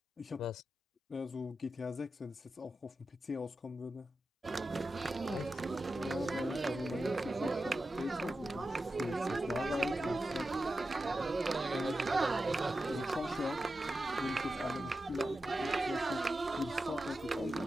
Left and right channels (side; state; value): both; normal; correlation 0.91